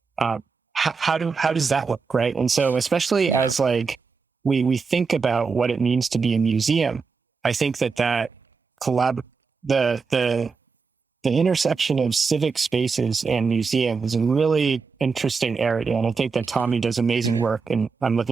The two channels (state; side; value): quieter; left; 5.0 dB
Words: how does that look, right? And so especially as like we think about what it means to be a museum, I think that the intersection of civic spaces and museum is a really interesting area. And I think that Tommy does amazing work, and I'm